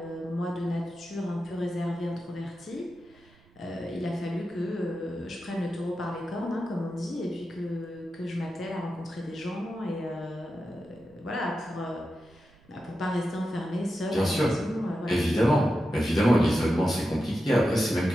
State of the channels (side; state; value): right; noise; rumble, 29 dB below the sound